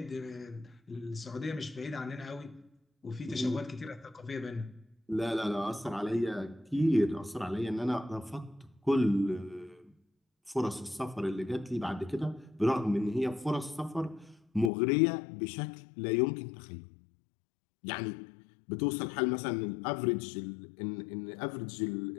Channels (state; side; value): drops out; right; at 14.7 s